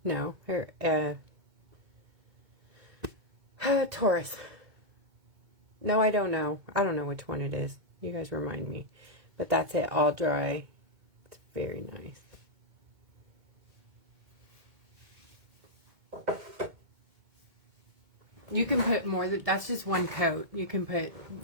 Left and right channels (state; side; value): late; left; 2.2 ms